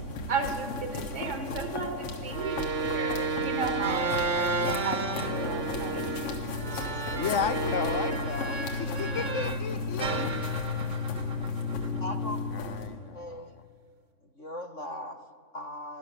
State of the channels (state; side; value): late; right; 3.6 ms